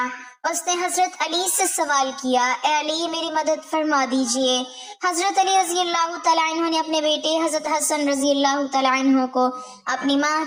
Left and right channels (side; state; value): both; identical; correlation 1.00